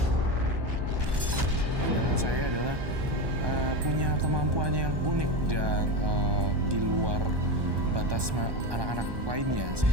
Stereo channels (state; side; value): late; left; 1.2 ms